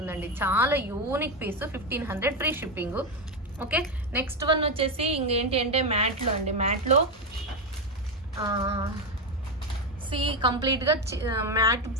చాలా unique piece. 1500 free shipping. Okay, next one వచ్చేసి ఇంకేంటి అంటే మ్యాట్లో అండి. మ్యాట్లో కంప్లీట్ గా మ్యాట్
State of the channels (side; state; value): both; normal; correlation 0.10